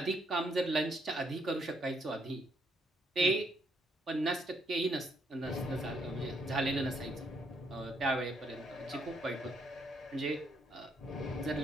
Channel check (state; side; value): normal; both; correlation 0.72